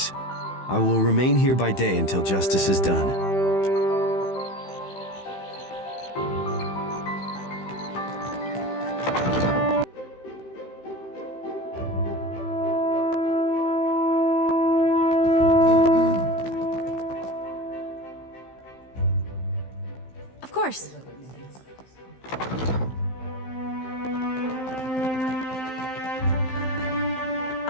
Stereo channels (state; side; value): late; right; 15 ms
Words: I will remain here by day until justice is done. Of course.